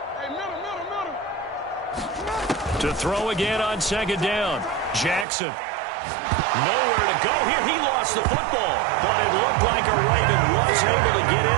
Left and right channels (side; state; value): left; drops out; at 5.2 s